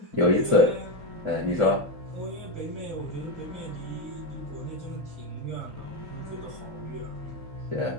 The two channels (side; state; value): left; late; 3.8 ms